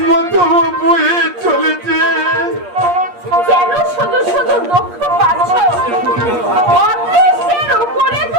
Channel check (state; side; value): late; left; 8.5 ms